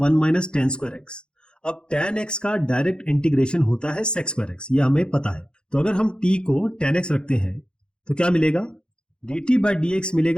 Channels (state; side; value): late; right; 0.050 ms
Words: minus tan square x। अब tan x का डायरेक्ट इंटीग्रेशन होता है sec स्क्वायर x, ये हमें पता है। तो अगर हम t को tan x रखते हैं तो क्या मिलेगा, dt बाय dx